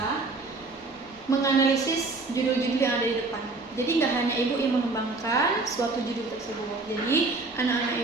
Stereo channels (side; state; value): left; quieter; 3.5 dB